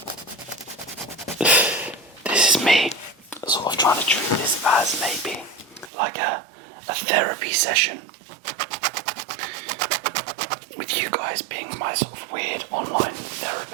This is me sort of trying to treat this as maybe like a therapy session with you guys. guys being my sort of weird online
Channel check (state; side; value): drops out; left; at 5.9 s